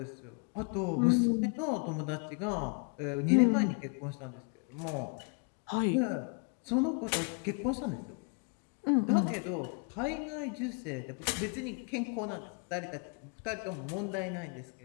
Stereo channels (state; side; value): quieter; right; 37.2 dB